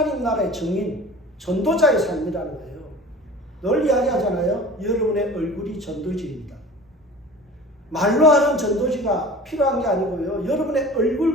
나라의 증인, 전도자의 삶이라는 거예요. 늘 이야기하잖아요. 여러분의 얼굴이 전도지입니다. 말로 하는 전도지가 필요한 게 아니고요. 여러분의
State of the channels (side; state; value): both; normal; correlation 0.40